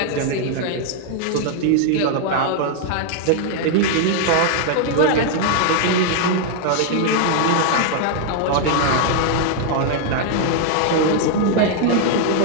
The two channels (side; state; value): both; different; correlation 0.00